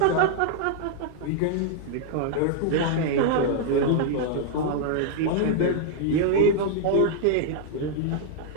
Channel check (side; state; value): both; different; correlation -0.01